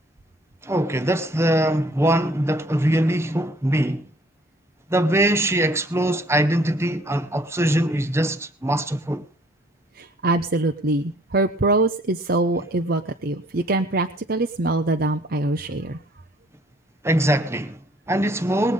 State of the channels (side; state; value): both; normal; correlation 0.59